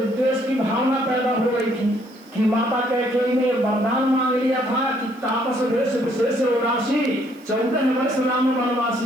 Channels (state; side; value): noise; right; hiss, 29 dB below the sound